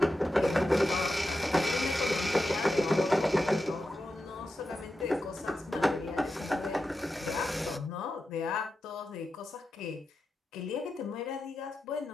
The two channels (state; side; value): normal; both; correlation 0.90